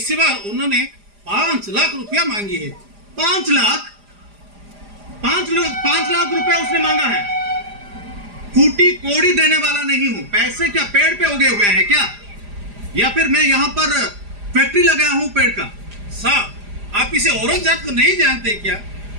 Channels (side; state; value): left; late; 4.9 ms